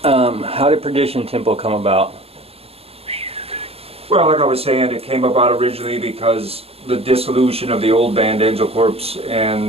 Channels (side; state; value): left; late; 0.29 ms